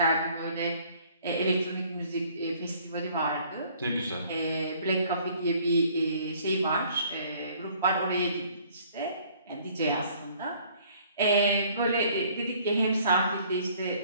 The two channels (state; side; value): inverted; both; correlation -0.58